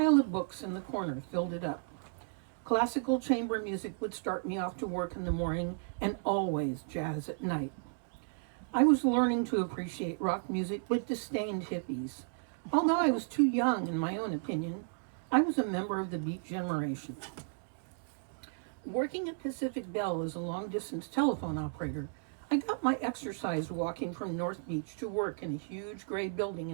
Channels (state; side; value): silent; left; digital silence